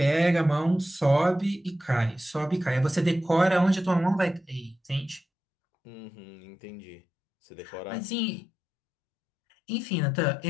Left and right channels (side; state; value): right; drops out; at 5.2 s